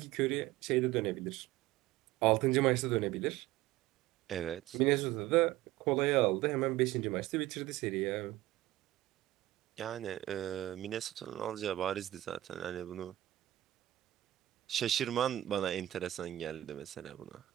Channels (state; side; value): quieter; left; 15.5 dB